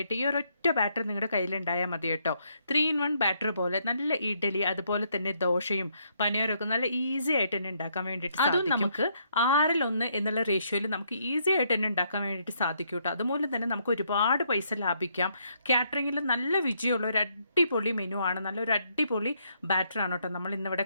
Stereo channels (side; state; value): both; inverted; correlation -0.73